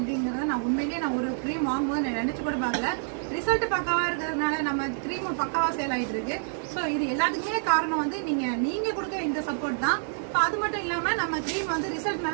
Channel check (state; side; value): silent; left; digital silence